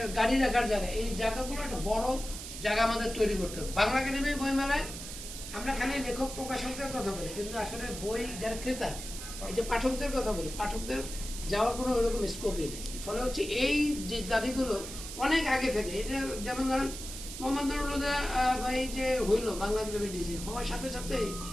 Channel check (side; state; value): right; noise; hiss, 9 dB below the sound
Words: গাড়ি রাখার জায়গা, এই জায়গাগুলো একটা বড় জায়গা আমাদের তৈরি করতে হবে। বাংলা একাডেমি বইমেলায় আমরা খালি লেখক প্রকাশকদের কথা বলি, কিন্তু আসলে বই যারা ক্রেতা, এই যে পাঠকদের কথা বলি, পাঠকদের যাওয়ার কোনো ওইরকম স্কোপই নেই। ফলে হচ্ছে এই যে দাবিগুলো অনেক আগে থেকে, এটা যেমন ধরেন মোহাম্মদ ভাই যে হইলো বাংলা একাডেমি ডিসি হওয়ার সাথে সাথেই